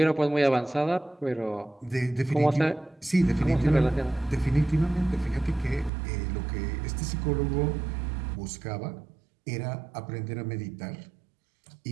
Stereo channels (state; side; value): drops out; left; at 5.9 s